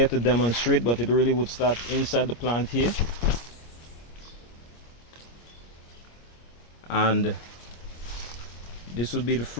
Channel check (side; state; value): right; late; 25 ms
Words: to demonstrate, but it really would start inside the plant here. And this would be the